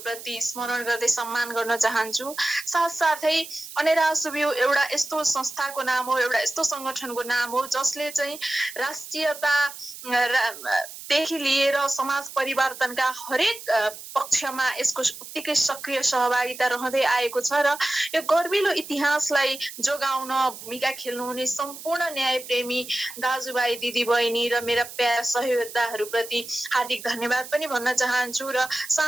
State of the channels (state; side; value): noise; right; hiss, 13 dB below the sound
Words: स्मरण गर्दै सम्मान गर्न चाहन्छु। साथसाथै अनेरासुबिउ एउटा यस्तो संस्थाको नाम हो, एउटा यस्तो संगठनको नाम हो जसले चाहिँ राष्ट्रियता देखि लिएर समाज परिवर्तनका हरेक पक्षमा यसको उत्तिकै सक्रिय सहभागिता रहँदै आएको छ र यो गर्विलो इतिहासलाई जोगाउन भूमिका खेल्नुहुने सम्पूर्ण न्यायप्रेमी दाजुभाइ दिदीबहिनी र मेरा प्यारा सहयोगदाताहरूप्रति हार्दिक धन्यवाद पनि भन्न चाहन्छु। र